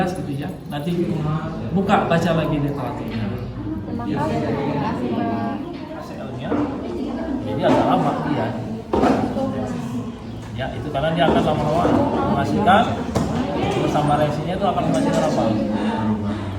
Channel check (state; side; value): identical; both; correlation 1.00